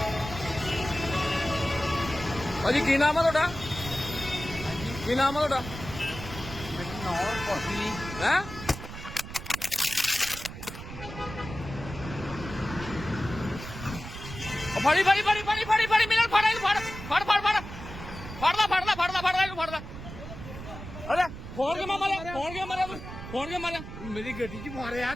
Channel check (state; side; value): noise; right; rumble, 11 dB below the sound